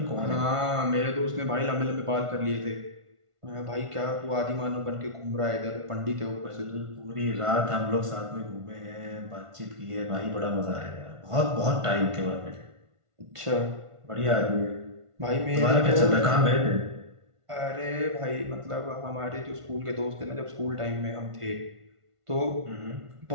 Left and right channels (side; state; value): left; late; 1.5 ms